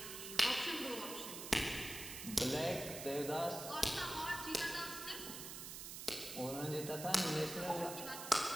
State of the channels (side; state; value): right; noise; hiss, 8 dB below the sound